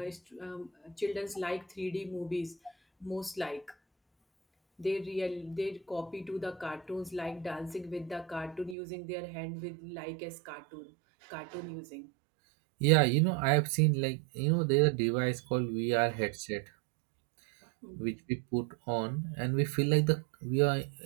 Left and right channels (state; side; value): drops out; left; at 8.8 s